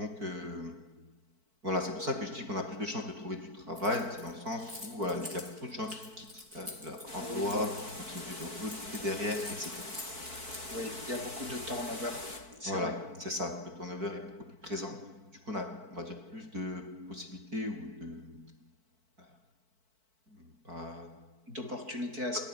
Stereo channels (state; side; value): late; left; 4.5 ms